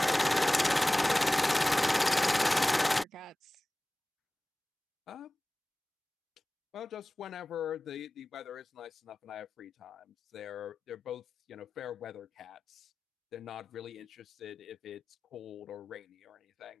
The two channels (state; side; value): normal; both; correlation 0.98